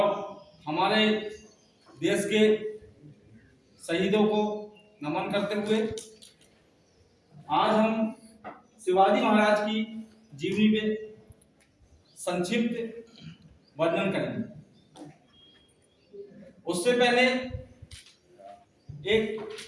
हमारे देश के शहीदों को नमन करते हुए आज हम शिवाजी महाराज की जीवनी में संक्षिप्त वर्णन करेंगे। उससे पहले एक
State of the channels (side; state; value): both; identical; correlation 1.00